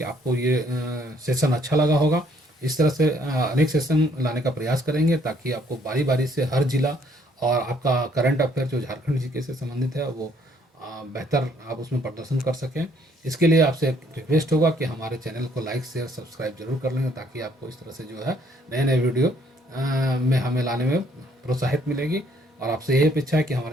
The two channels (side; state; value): both; normal; correlation 0.65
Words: आपको ये सेशन अच्छा लगा होगा। इस तरह से अनेक सेशन लाने का प्रयास करेंगे ताकि आपको बारी बारी से हर जिला और आपका करंट अफेयर जो झारखंड जीके से संबंधित है वो बेहतर आप उसमें प्रदर्शन कर सकें। इसके लिए आपसे एक रिक्वेस्ट होगा कि हमारे चैनल को लाइक शेयर सब्सक्राइब जरूर कर लें ताकि आपको इस तरह से जो है नए नए वीडियो में हमें लाने में प्रोत्साहित मिलेगी। और आपसे यही अपेक्षा है कि